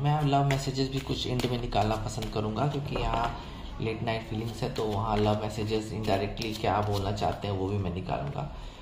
मैं लव मैसेजेस भी कुछ एंड में निकालना पसंद करूँगा, क्योंकि यहाँ लेट नाइट फीलिंग्स है, तो वहाँ लव मैसेजेस इनडायरेक्टली क्या बोलना चाहते हैं वो भी मैं निकालूंगा।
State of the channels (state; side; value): identical; both; correlation 1.00